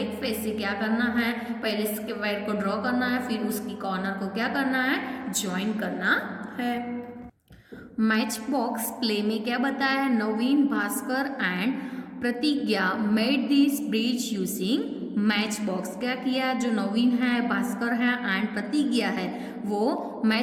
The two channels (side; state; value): both; identical; correlation 1.00